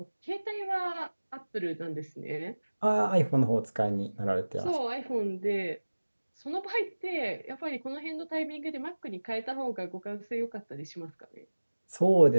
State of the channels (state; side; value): inverted; both; correlation -1.00